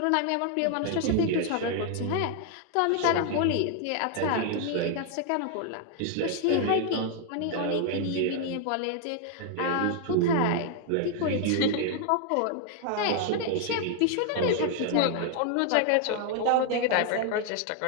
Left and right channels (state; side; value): different; both; correlation 0.00